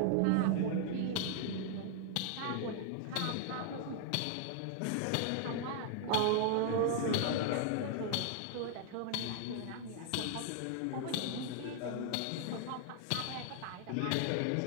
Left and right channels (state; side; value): different; both; correlation 0.00